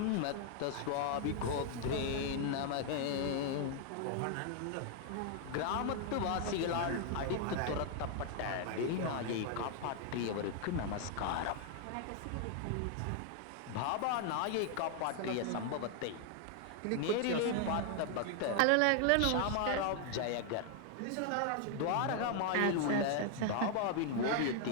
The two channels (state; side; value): different; both; correlation 0.00